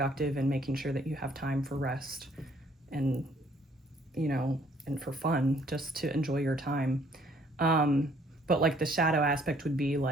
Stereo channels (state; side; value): normal; both; correlation 0.63